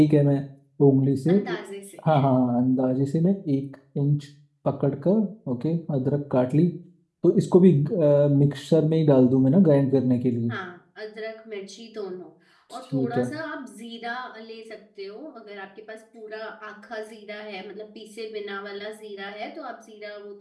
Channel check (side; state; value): both; identical; correlation 1.00